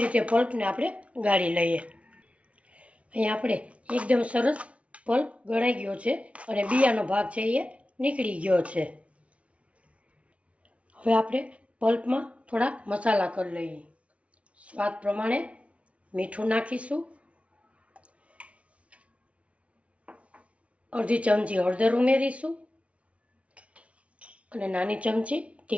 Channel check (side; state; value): left; late; 0.063 ms